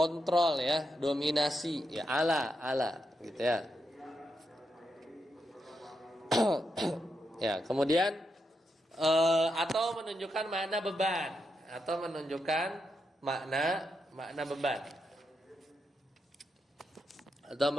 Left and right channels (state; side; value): normal; both; correlation 0.84